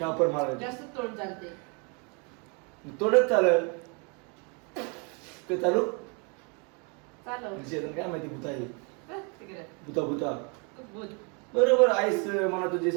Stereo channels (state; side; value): quieter; left; 34.3 dB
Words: मारायचं जास्त तोंड चालते तोडच चालेल काय चालू चालव शेतन काय माहिती भूता आहे तिकडे भूता भूता बोल बरोबर आईस मला तुझी